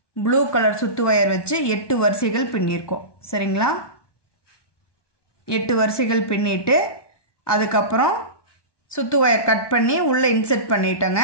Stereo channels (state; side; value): late; right; 1.2 ms